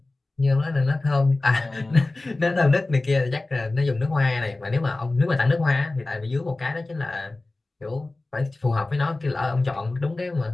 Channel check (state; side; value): quieter; right; 3.0 dB